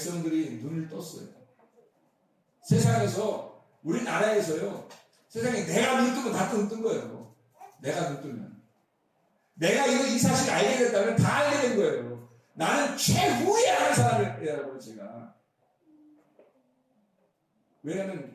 눈을 떴어요. 세상에서 우리나라에서요. 세상에 내가 눈 뜨면 다 뜬 거예요. 내가 눈 뜨면. 내가 이 사실 알게 됐다면 다 알게 된 거예요. 나는 최후에 아는 사람이라고 제가. 왜냐하면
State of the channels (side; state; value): both; identical; correlation 1.00